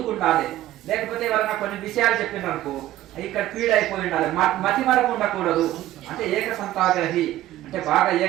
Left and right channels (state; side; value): quieter; left; 14.4 dB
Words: లేకపోతే ఎవరైనా కొన్ని విషయాలు చెప్పినారు అనుకో, ఇక్కడ ఫీడ్ అయిపోయి ఉండాలి, మతి మరపు ఉండకూడదు. అంటే ఏక సంతాగ్రహి అంటే బాగా